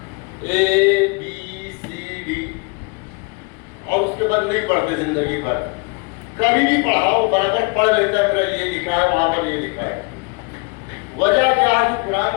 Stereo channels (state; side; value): quieter; right; 31.0 dB